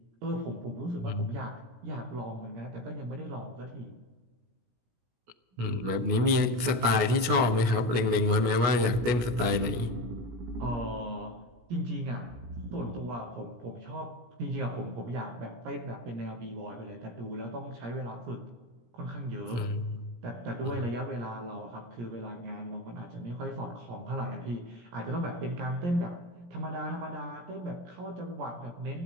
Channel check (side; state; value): left; late; 17 ms